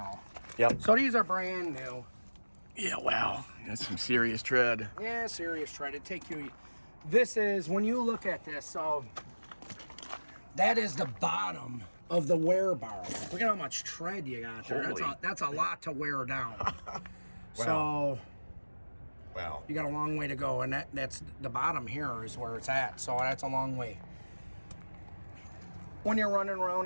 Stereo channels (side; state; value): both; inverted; correlation -1.00